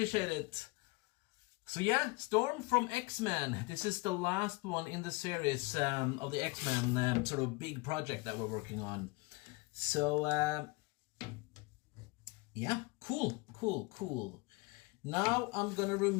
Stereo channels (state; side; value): quieter; right; 25.6 dB